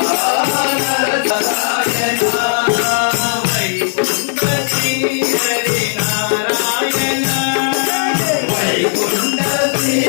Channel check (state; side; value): silent; right; 62 dB below the other